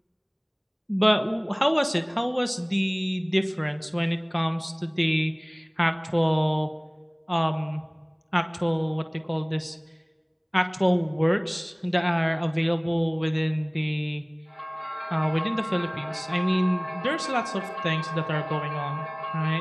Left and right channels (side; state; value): both; identical; correlation 1.00